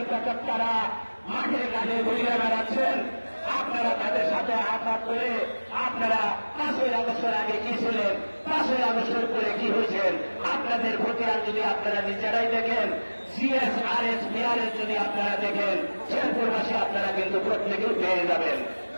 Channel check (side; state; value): both; inverted; correlation -1.00